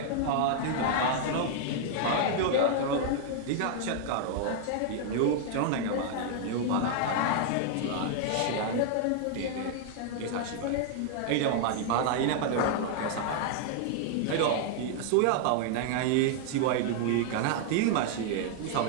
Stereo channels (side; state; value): both; different; correlation 0.00